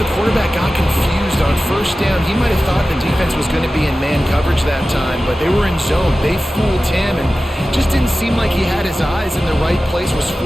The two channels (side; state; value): both; normal; correlation 0.95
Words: quarterback got confused on first down. He might have thought the defense was going to be in man coverage that time, but they were in zone. They fooled him and just didn't seem like he had his eyes in the right place, was